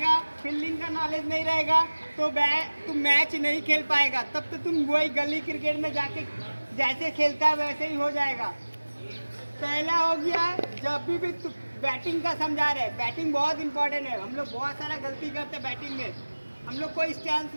फील्डिंग का नॉलेज नहीं रहेगा तो तुम मैच नहीं खेल पाएगा। तब तो तुम वही गली क्रिकेट में जाके जैसे खेलता है वैसे ही हो जाएगा। पहला हो गया, जब भी तुम बैटिंग का समझा रहे, बैटिंग बहुत इंपॉर्टेंट है। हम लोग बहुत सारा गलती करते हैं बैटिंग में। हम लोग कोई स्टैंस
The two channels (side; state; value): both; inverted; correlation -1.00